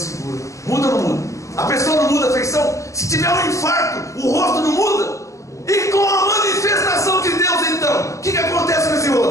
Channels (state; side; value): late; right; 0.15 ms